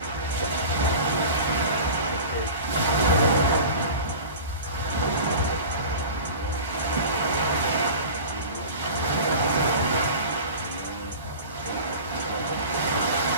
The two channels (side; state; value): both; inverted; correlation -0.36